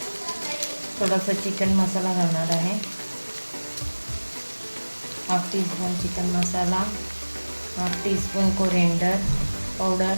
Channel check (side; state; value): both; inverted; correlation -1.00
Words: थोडासा चिकन मसाला घालणार आहे। 1/2 टीस्पून चिकन मसाला, 1/2 teaspoon coriander powder,